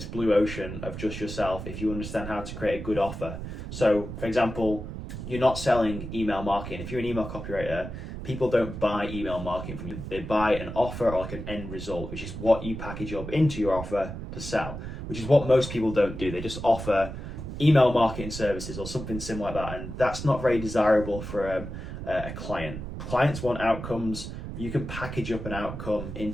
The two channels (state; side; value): noise; right; rumble, 8 dB below the sound